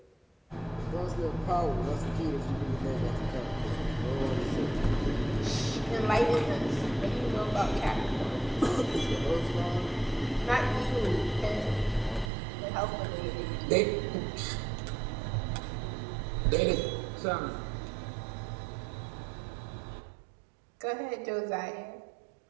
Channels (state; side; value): drops out; left; at 12.3 s